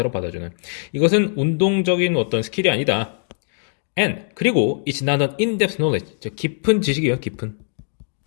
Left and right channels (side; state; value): right; silent; 65 dB below the other